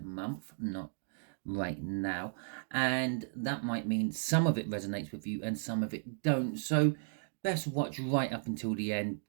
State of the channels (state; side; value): silent; left; digital silence